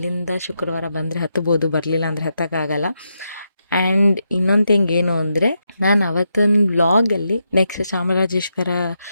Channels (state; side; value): inverted; both; correlation -0.84